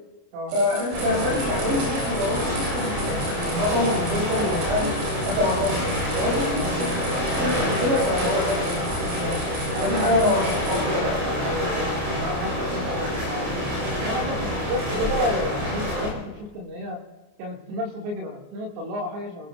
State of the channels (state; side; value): late; left; 29 ms